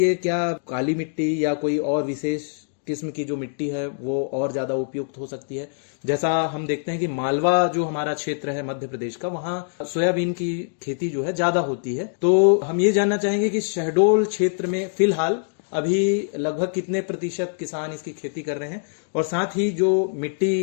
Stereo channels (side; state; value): right; silent; digital silence